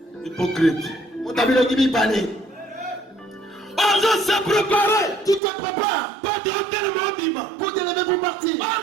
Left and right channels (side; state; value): left; drops out; at 5.4 s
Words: Hypocrite. On t'a vu le gibi parler. On doit se préparer. Tu te prépares Pour te lever pour partir.